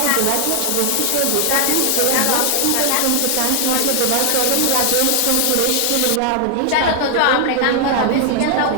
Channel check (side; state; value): both; different; correlation 0.00